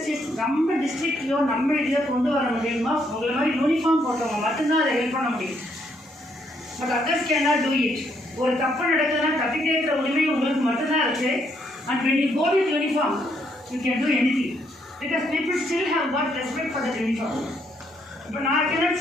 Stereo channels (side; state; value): both; normal; correlation 0.73